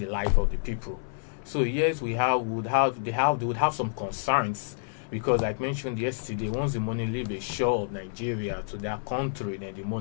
life of the people. So yes, they would have some concerns, because like mentioned yesterday, once the money leaves the shore of Nigeria to their country, then the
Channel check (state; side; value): silent; right; 58 dB below the other